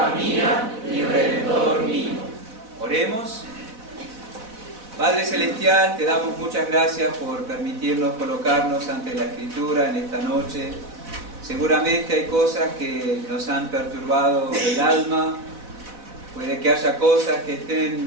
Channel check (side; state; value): left; late; 4.1 ms